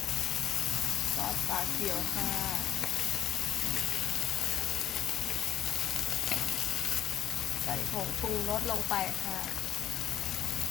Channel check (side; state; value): right; quieter; 11.5 dB